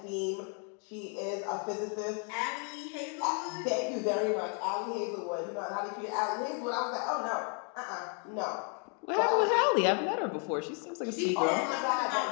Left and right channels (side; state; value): right; quieter; 39.1 dB